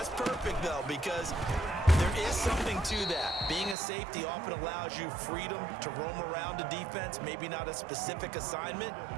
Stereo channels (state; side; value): drops out; left; at 3.8 s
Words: perfect, though, because there is something to that. Being a safety often allows you freedom to roam around a defense, maybe not a specific assignment.